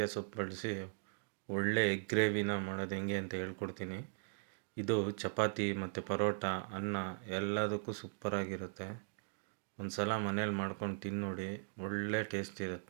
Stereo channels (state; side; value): silent; left; digital silence